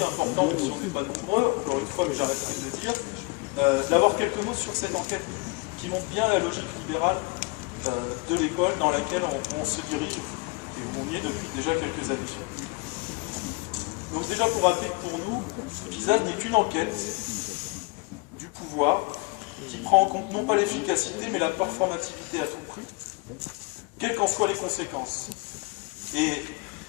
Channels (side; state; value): right; quieter; 27.6 dB